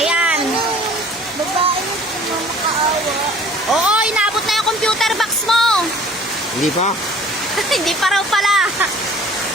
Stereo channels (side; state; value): both; normal; correlation 0.50